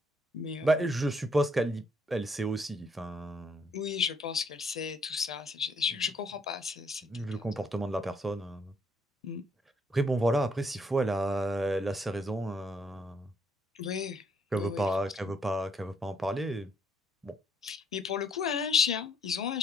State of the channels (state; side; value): normal; both; correlation 0.69